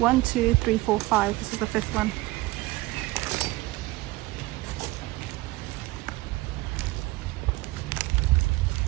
2, 3, 4, 5. This is the fifth one.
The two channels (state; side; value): quieter; left; 19.7 dB